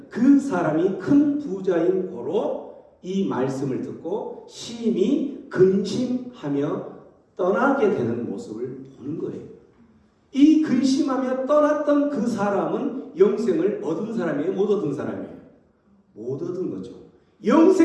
그 사람이 큰 부자인 고로 이 말씀을 듣고 심히 근심하며 떠나게 되는 모습을 보는 거예요. 이 근심하며 떠났던 그 사람은 영생을 얻은 사람이에요? 못 얻은 사람이에요? 못 얻은 거죠.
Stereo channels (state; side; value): identical; both; correlation 1.00